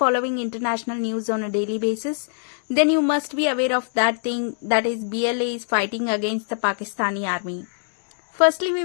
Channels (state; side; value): silent; right; digital silence